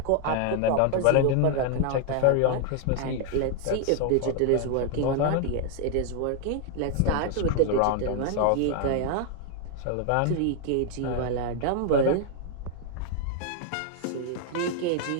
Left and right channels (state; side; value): different; both; correlation 0.00